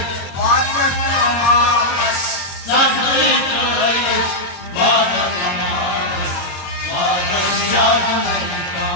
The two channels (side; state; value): right; late; 21 ms